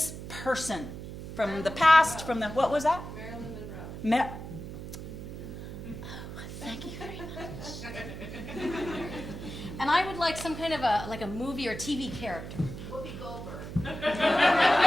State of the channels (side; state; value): right; noise; hum, 9 dB below the sound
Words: person from the past, from the, what was that? Marilyn Monroe. Thank you very much. And I would like some kind of a movie or TV character. Whoopi Goldberg.